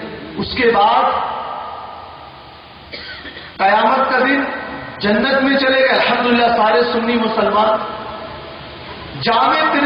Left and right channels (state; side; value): identical; both; correlation 1.00